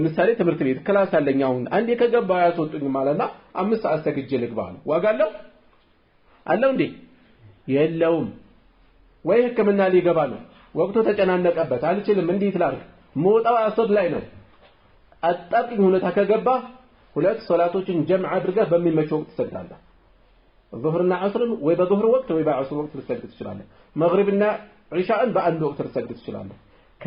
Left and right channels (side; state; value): both; identical; correlation 1.00